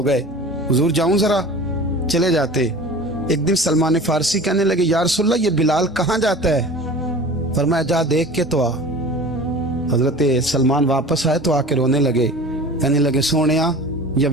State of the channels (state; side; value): normal; both; correlation 0.39